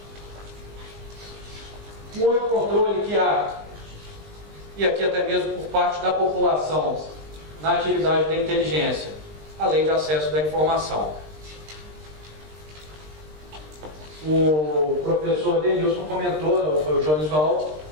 Um outro controle que há, e aqui até mesmo por parte da população, na atividade da inteligência, a lei de acesso da informação. O professor Denilson comentou, foi o Jones Val,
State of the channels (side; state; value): left; late; 20 ms